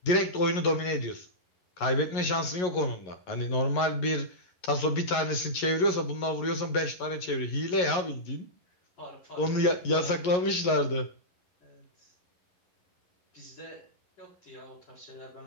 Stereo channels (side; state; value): right; late; 11 ms